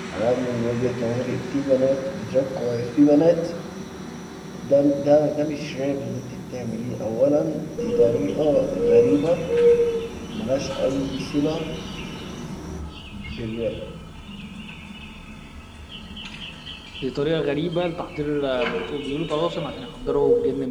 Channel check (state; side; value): identical; both; correlation 1.00